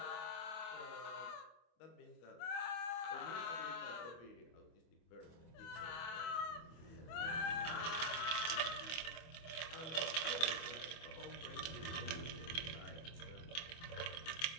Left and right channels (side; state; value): right; late; 25 ms